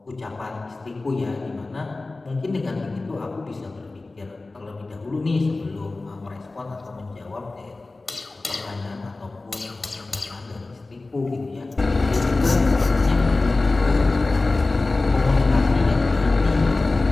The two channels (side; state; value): right; quieter; 3.3 dB